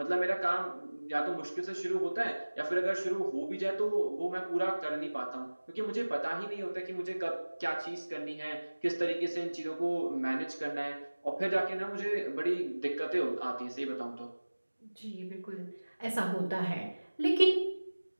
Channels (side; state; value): both; inverted; correlation -1.00